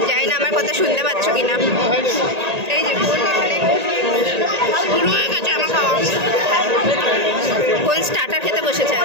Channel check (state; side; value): late; left; 1.8 ms